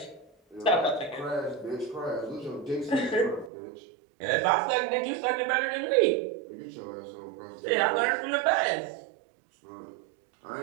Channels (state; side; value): drops out; left; at 3.5 s